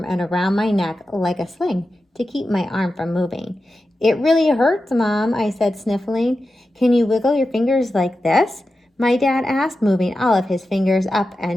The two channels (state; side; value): normal; both; correlation 0.92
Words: and around my neck like a sling to keep my arm from moving. It really hurts, Mom, I said, sniffling. Can you wiggle your fingers like this? My dad asked, moving all of his fingers up